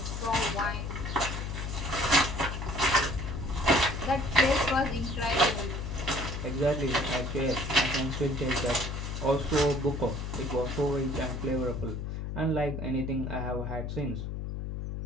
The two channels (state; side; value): noise; left; hum, 4 dB below the sound